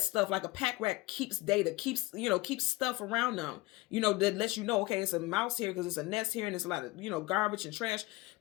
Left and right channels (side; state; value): right; quieter; 20.9 dB